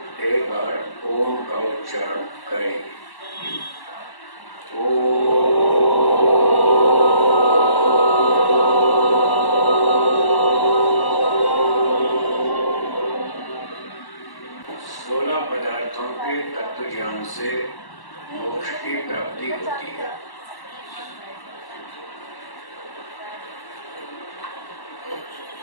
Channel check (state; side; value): late; right; 1.1 ms